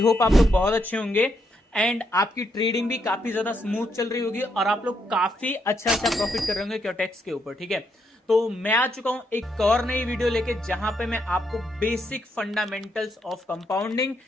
आप लोग बहुत अच्छे होंगे एंड आपकी ट्रेडिंग भी काफी ज्यादा स्मूथ चल रही होगी और आप लोग काफी अच्छा प्रॉफिट कर रहे होंगे क्योटेक्स के ऊपर। ठीक है, तो मैं आ चुका हूं एक और नई वीडियो लेके जहां पे मैं आपको बेसिक फंडामेंटल्स ऑफ कंपाउंडिंग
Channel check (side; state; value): both; normal; correlation 0.77